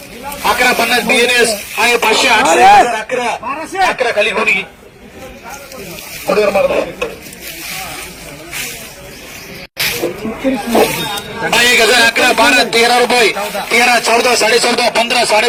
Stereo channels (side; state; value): both; identical; correlation 1.00